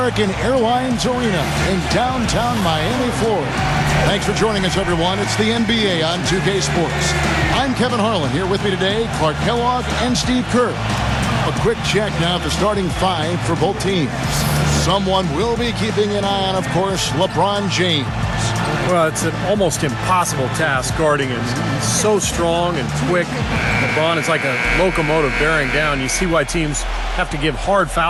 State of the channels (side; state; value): both; identical; correlation 1.00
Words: Airlines Arena in downtown Miami, Florida. Thanks for joining us, everyone. It's the NBA on 2K Sports. I'm Kevin Harlan. Here with me today, Clark Kellogg and Steve Kerr. A quick check now at the starting five for both teams. Someone will be keeping an eye on, of course, LeBron James. Well, it's an almost impossible task guarding him. He's so strong and quick. LeBron is like a locomotive bearing down. You see why teams have to give hard